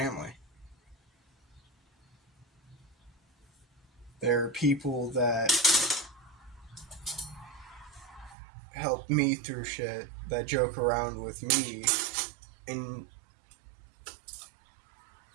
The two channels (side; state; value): left; drops out; at 8.3 s